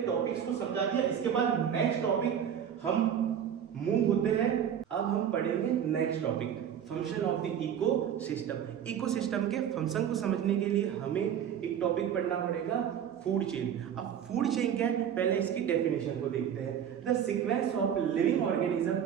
टॉपिक्स को समझा दिया। इसके बाद नेक्स्ट टॉपिक हम मूव होते हैं। अब हम पढ़ेंगे next topic, function of the ecosystem. Ecosystem के फंक्शन को समझने के लिए हमें एक टॉपिक पढ़ना पड़ेगा, फूड चेन। अब फूड चेन क्या है, पहले इसकी डेफिनेशन को देखते हैं। The sequence of living organism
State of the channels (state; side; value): quieter; left; 8.9 dB